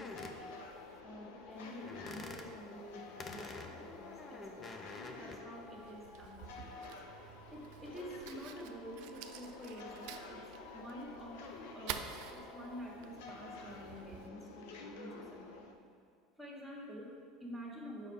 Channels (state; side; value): normal; both; correlation 0.36